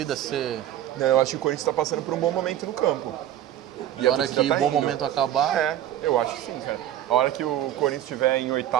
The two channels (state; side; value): quieter; left; 12.0 dB